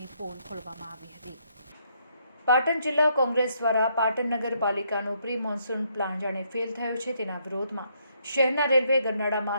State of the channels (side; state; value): both; inverted; correlation -0.73